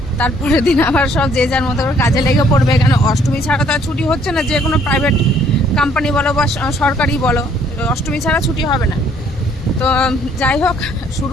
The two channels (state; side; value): normal; both; correlation 0.62